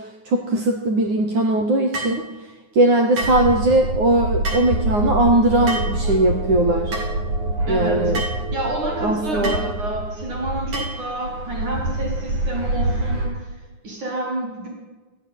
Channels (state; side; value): late; left; 9.7 ms